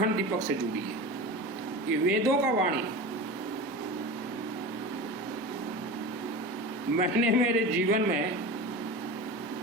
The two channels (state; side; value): normal; both; correlation 0.30